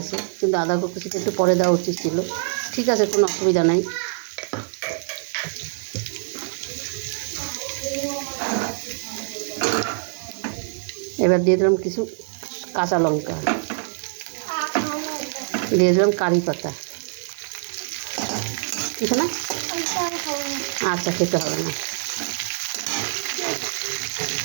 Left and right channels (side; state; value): left; silent; 62 dB below the other